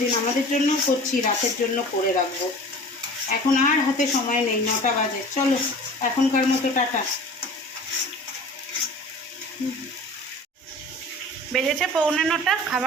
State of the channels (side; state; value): both; normal; correlation 0.41